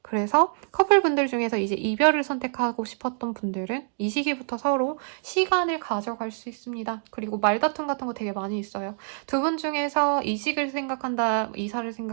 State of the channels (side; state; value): left; silent; 61 dB below the other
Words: 그래서 커플분들 중에서 이제 이별을 선택하고 싶었던 분들은 이 시기부터 서로 시간을 가져갈 수 있습니다. 그리고 말다툼 같은 거 되게 많이 있어요. 두 분 중에서 이직을 생각한다, 이사를